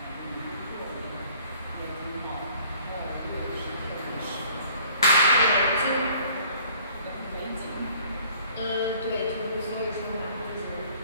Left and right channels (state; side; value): inverted; both; correlation -0.56